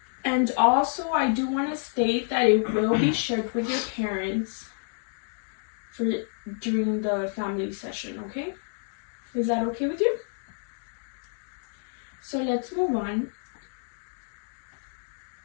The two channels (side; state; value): right; silent; 56 dB below the other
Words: And also, I do want to state that it will be shared with your parents during the family session, okay? Is that okay with you? So let's move on.